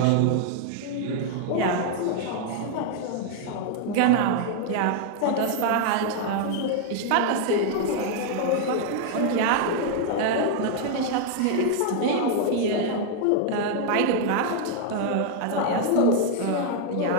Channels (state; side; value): different; both; correlation 0.00